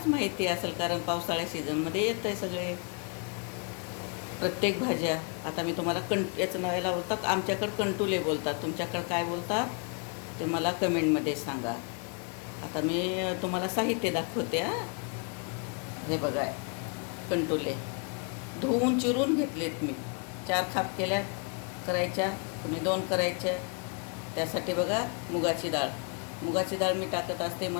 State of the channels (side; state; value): right; quieter; 37.0 dB